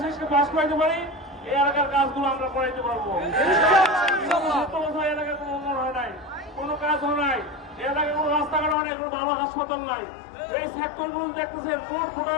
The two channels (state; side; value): drops out; right; at 8.8 s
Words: শীষকে পাস করাইতে পারি এই এলাকার কাজগুলো আমরা করাইতে পারবো। এলাকায় কোনো উন্নয়ন হয় নাই, কোনো কাজ হয় নাই, এই এলাকায় কোনো রাস্তাঘাট হয় নাই, কোনো ভালো হাসপাতাল নাই। এই সেক্টর গুলো দেখতেছেন ভোট